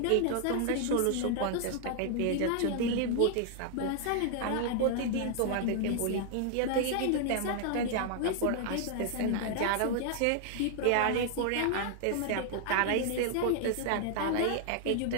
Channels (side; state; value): both; different; correlation 0.00